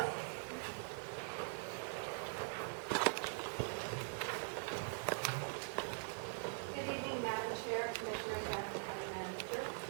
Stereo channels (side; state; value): left; silent; digital silence